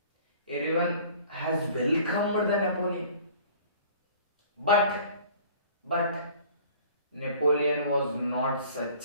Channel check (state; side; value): inverted; both; correlation -0.49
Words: Everyone has welcomed the Napoleon. But Napoleon was not such